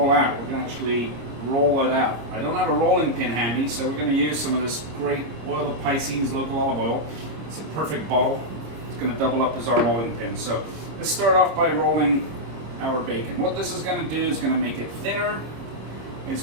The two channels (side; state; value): left; late; 26 ms